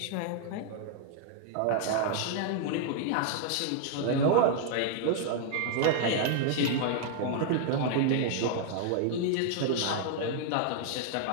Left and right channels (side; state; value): both; different; correlation 0.00